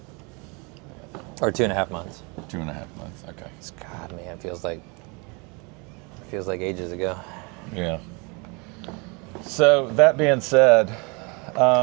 Or 2.5 months. 2.5 months, okay. God, man, feels like ages ago. Yeah. So that being said,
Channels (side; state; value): left; quieter; 30.5 dB